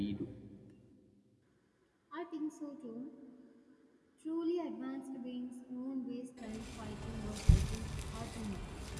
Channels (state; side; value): identical; both; correlation 1.00